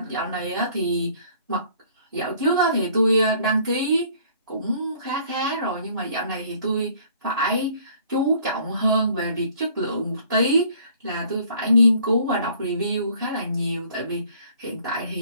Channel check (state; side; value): inverted; both; correlation -0.57